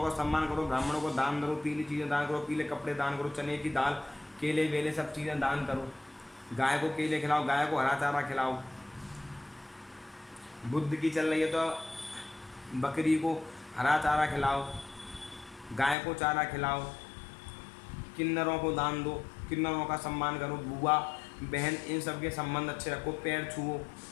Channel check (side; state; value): right; drops out; at 16.0 s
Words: का सम्मान करो, ब्राह्मणों को दान करो, पीली चीज़ें दान करो, पीले कपड़े दान करो, चने की दाल, केले वेले सब चीज़ें दान करो। गाय को केले खिलाओ, गाय को हरा चारा खिलाओ। बुध की चल रही है तो बकरी को हरा चारा खिलाओ, गाय को चारा खिलाओ। किन्नरों को दान दो, किन्नरों का सम्मान करो, बुआ बहन इन सब के संबंध अच्छे रखो, पैर छुओ।